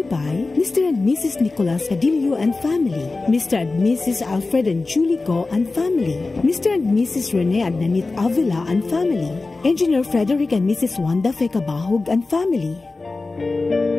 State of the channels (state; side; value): quieter; right; 3.5 dB